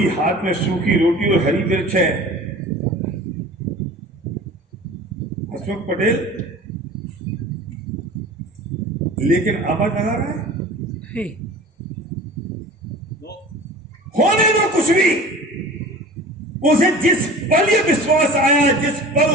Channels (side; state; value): both; normal; correlation 0.40